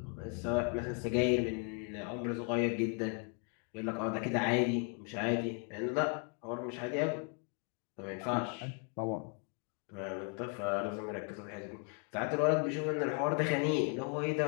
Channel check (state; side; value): quieter; right; 38.1 dB